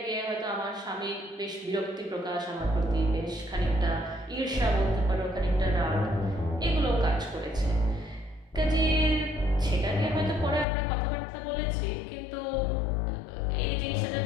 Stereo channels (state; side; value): drops out; right; at 10.7 s